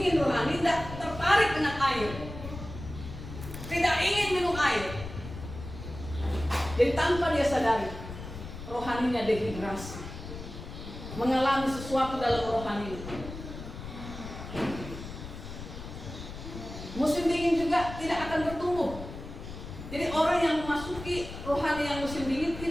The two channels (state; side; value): noise; left; rumble, 11 dB below the sound